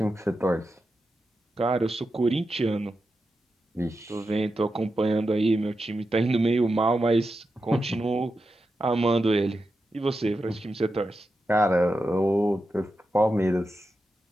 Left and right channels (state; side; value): normal; both; correlation 0.89